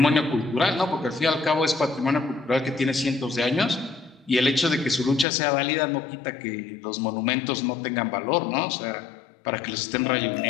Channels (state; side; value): drops out; right; at 5.2 s